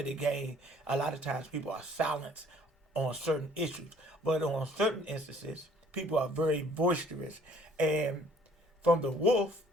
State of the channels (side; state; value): both; normal; correlation 0.58